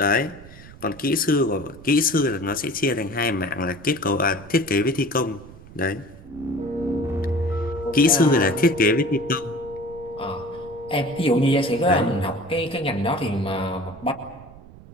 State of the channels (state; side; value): noise; right; rumble, 19 dB below the sound